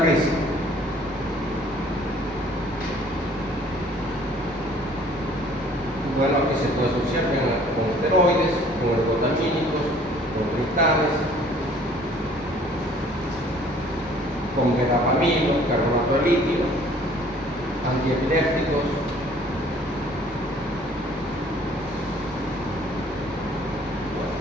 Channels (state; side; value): normal; both; correlation 0.55